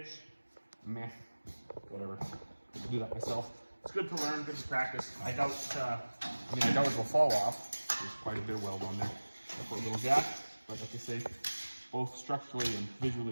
meh, whatever. I do that myself. It's good to learn, good to practice. I doubt it will fall off. There's quite a bit of weld on there. I put a little gap, but like I say, both structurally and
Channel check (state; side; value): inverted; both; correlation -1.00